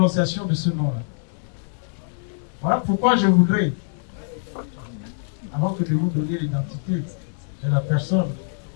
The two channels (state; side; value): silent; right; 63 dB below the other